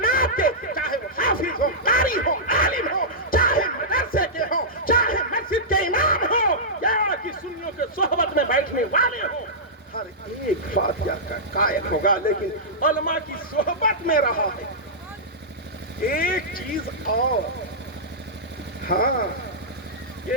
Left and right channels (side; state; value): both; normal; correlation -0.14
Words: کے, چاہے وہ حافظ ہو, قاری ہو, عالم ہو, چاہے مدرسے کے ہو, چاہے مسجد کے امام ہو, یا کہ سنیوں کے صحبت میں بیٹھنے والے ہو, ہر ایک فاتحہ کا قائل ہوگا. لیکن علماء کی صحبت میں رہا ہے. ایک چیز اور, ہاں